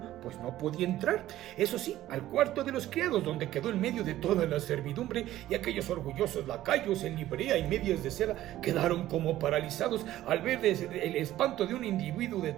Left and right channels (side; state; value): left; quieter; 14.2 dB